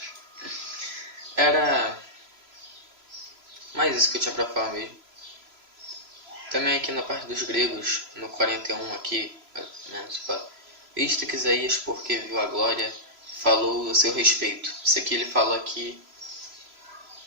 Era mais isso que eu tinha pra falar mesmo. Também aqui na parte dos gregos, no 41 aqui, visto que Isaías, porque viu a glória, falou a seu respeito. Isso aqui ele fala aqui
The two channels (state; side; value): late; left; 3.0 ms